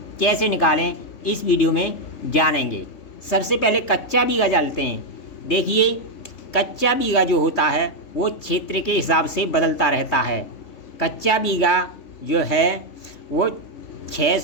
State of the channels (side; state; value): right; late; 3.5 ms